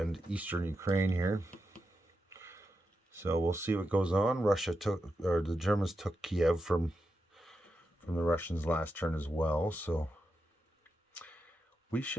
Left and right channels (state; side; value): normal; both; correlation 0.87